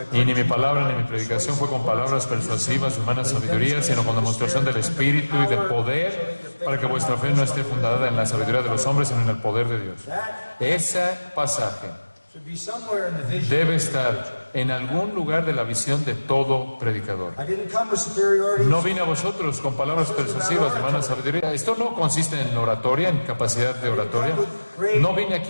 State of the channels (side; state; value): both; inverted; correlation -1.00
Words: Y ni mi palabra ni mi predicación fue con palabras persuasivas de humana sabiduría, sino con demostración del Espíritu y de poder, para que vuestra fe no esté fundada en la sabiduría de los hombres, sino en el poder de Dios. Ese pasaje debe estar en algún lugar de la visión de todo predicador. No vine a vosotros con palabras persuasivas de humana sabiduría. Esto no consiste en oratoria, en capacidad de oratoria. No vine